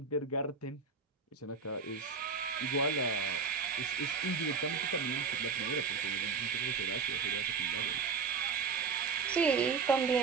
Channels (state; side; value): quieter; left; 5.2 dB